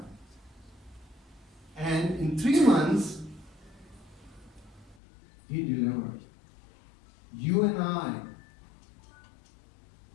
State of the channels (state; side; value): drops out; right; at 5.0 s